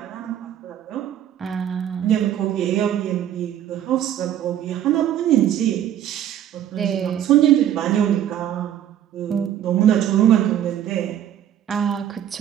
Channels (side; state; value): left; quieter; 10.8 dB